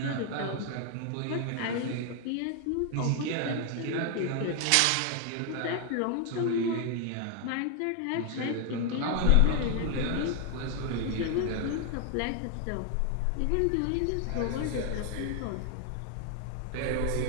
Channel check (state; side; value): different; both; correlation 0.00